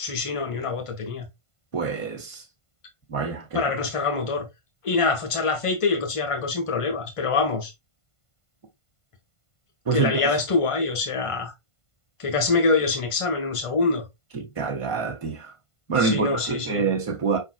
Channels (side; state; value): right; late; 1.5 ms